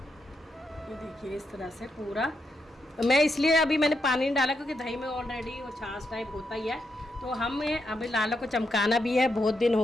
देखिए इस तरह से पूरा। मैं इसलिए अभी मैंने पानी नहीं डाला क्योंकि दही में ऑलरेडी वो छाछ टाइप होता ही है। तो हमें अभी लाला को चमकाना भी है, बहुत दिन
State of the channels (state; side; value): normal; both; correlation 0.82